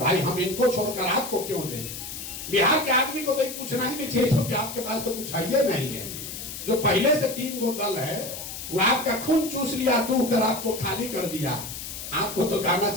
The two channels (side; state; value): left; noise; hiss, 9 dB below the sound